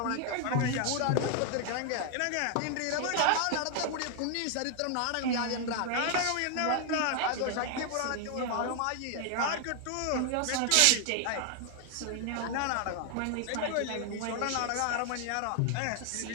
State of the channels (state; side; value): different; both; correlation 0.00